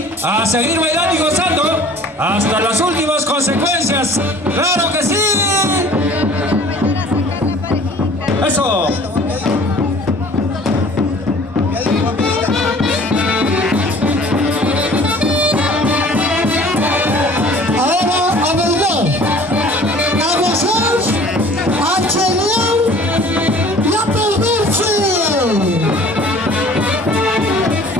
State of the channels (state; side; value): normal; both; correlation 0.49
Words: a seguir bailando y gozando hasta las últimas consecuencias. ¡Claro que sí! ¡Eso! Ahora a bailar, a gozar, a chelear y a perderse.